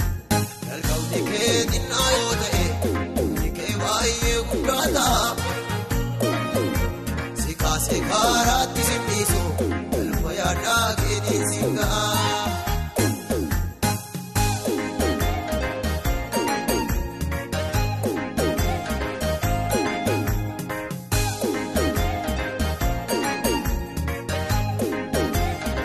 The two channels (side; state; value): both; identical; correlation 1.00